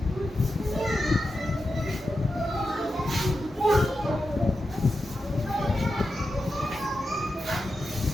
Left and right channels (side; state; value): both; normal; correlation 0.89